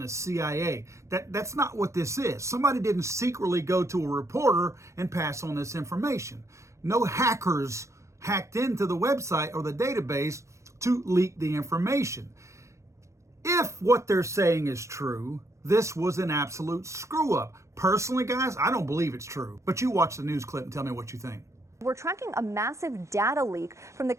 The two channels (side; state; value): left; late; 0.14 ms